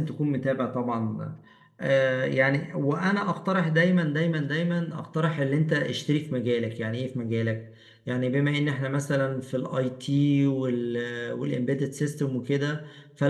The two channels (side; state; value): both; identical; correlation 1.00